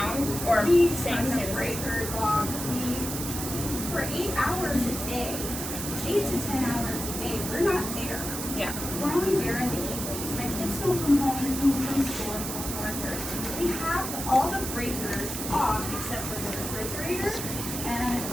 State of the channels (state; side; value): noise; right; hiss, 5 dB below the sound